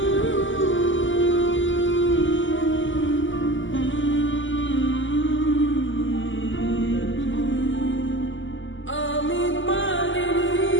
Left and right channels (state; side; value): late; right; 0.55 ms